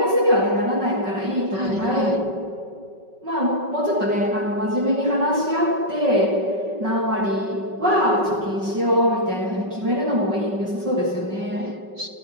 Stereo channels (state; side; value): late; left; 5.3 ms